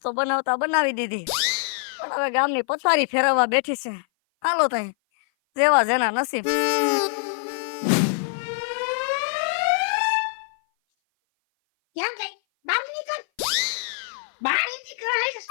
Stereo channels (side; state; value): right; silent; 57 dB below the other